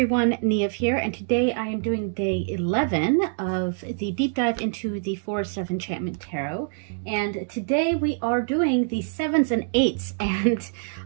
Neve here, and today I am doing day 11 of the deep dive into the Forest of Enchantment Tarot. And today we are doing the 7s and 8s, and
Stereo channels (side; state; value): left; silent; digital silence